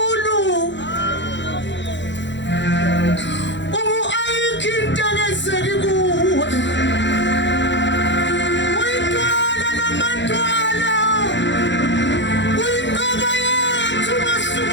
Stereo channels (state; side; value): late; right; 0.53 ms